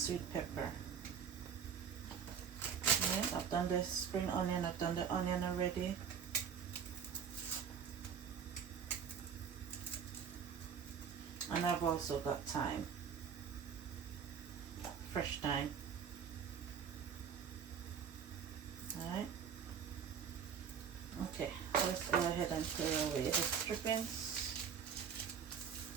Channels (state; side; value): quieter; left; 7.3 dB